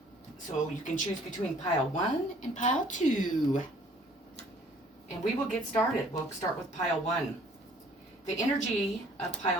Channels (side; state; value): both; normal; correlation 0.56